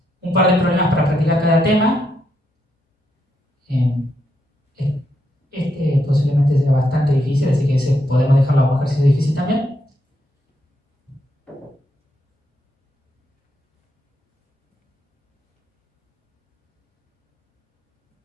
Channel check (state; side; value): normal; both; correlation 0.79